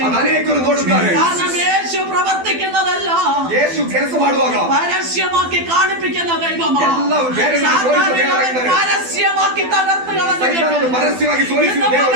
കാരണം യേശു പ്രവർത്തിക്കുന്നതല്ല, യേശു ಕೆಲಸ ಮಾಡುವಾಗ പരസ്യമാക്കി കാണിപ്പിക്കുന്ന ദൈവമാണ്. പരസ്യമാക്കി തകർത്ത് പരസ്യമാക്കി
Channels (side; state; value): left; late; 12 ms